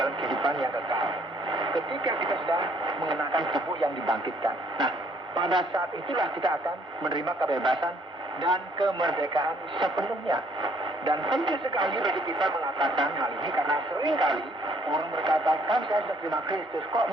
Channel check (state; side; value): normal; both; correlation 0.64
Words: kehidupan yang kekal. Ketika kita sudah mengenakan tubuh yang dibangkitkan. Nah, pada saat itulah kita akan menerima kebebasan dan kemerdekaan sepenuhnya. Dan penting sekali bagi kita mengatakan hal ini karena seringkali orang berkata, kan saya sudah terima Kristus, kok